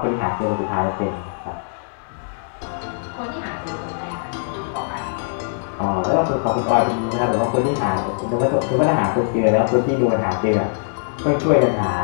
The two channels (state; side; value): silent; right; digital silence